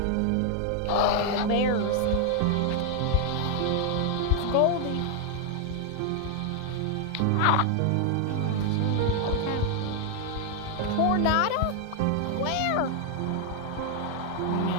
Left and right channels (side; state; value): both; different; correlation 0.00